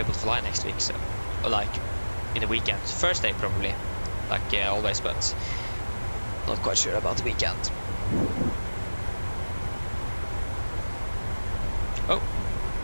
able to fly next week. So, or like in the weekend, first day probably, like always, but not quite sure about the weekend. Oh,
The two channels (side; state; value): both; inverted; correlation -1.00